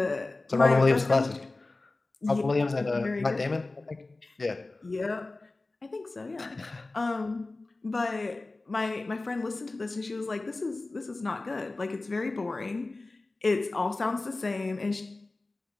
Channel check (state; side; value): quieter; right; 3.2 dB